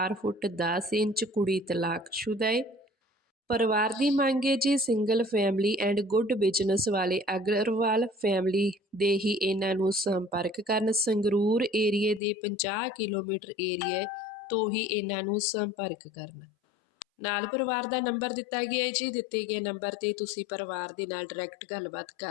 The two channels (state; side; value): drops out; right; at 12.2 s